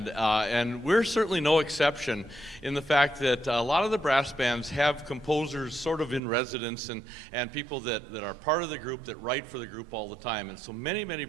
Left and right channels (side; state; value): left; drops out; at 6.2 s